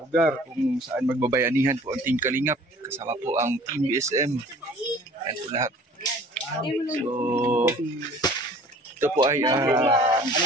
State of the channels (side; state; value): both; normal; correlation 0.50